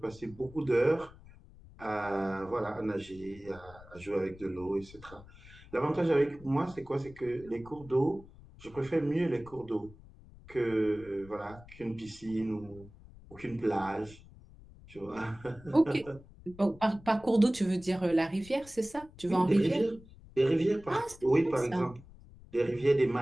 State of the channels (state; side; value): noise; left; rumble, 21 dB below the sound